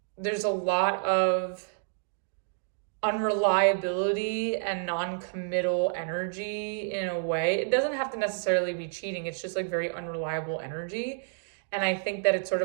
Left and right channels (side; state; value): left; silent; digital silence